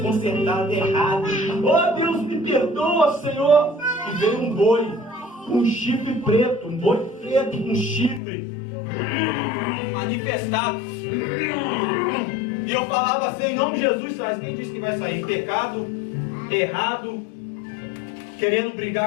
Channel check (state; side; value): drops out; right; at 8.2 s